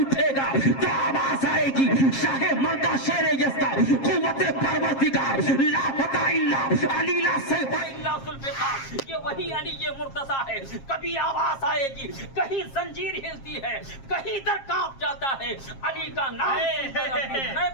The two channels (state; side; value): late; right; 7.4 ms